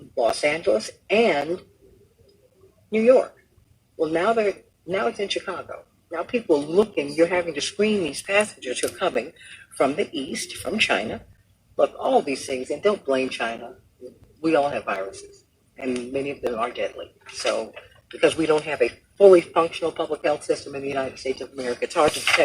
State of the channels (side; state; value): both; identical; correlation 1.00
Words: Los Angeles, and New York. Well, now it's in Chicago. Now people are looking. You're having to screen these passengers who are coming from the East, from China. Look, all these things, and don't blame China. We all have viruses, and many of them are deadly. So, because we don't have a fully functional public health system in the United States of America, it's hard to